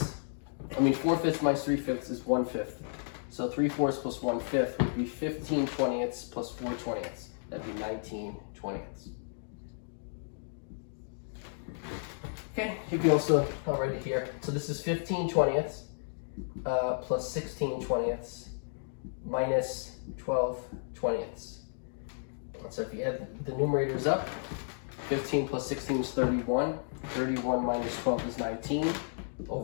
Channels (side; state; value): right; silent; digital silence